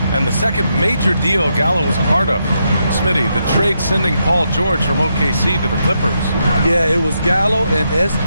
And the second major deal Gallo was a part of. Smitty, the trade sending Paul George from OKC to the Clippers. Yeah, it was Gallo and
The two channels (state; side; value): inverted; both; correlation -0.81